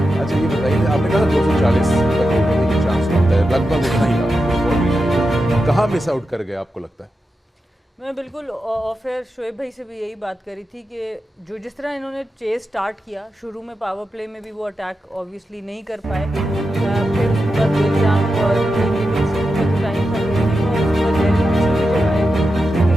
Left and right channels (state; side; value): normal; both; correlation 0.89